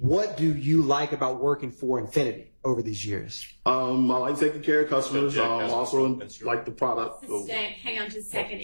do you like about working for Infinity over these years? I like taking care of customers. Also like the product. Sustained. Hang on just a second.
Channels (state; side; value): inverted; both; correlation -1.00